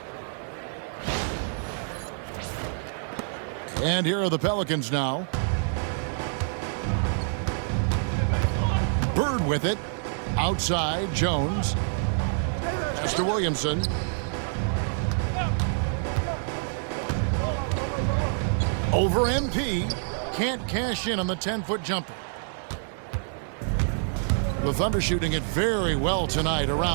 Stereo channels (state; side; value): silent; left; digital silence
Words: And here are the Pelicans now. Bird with it. Outside, Jones. Pass to Williamson. Over MP. Can't cash in on the 10-foot jumper. The Thunder shooting it very well tonight,